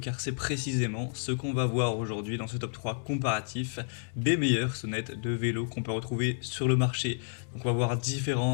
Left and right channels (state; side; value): silent; right; 58 dB below the other